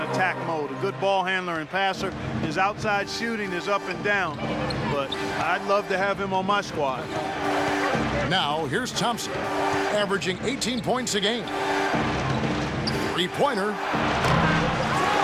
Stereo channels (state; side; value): identical; both; correlation 1.00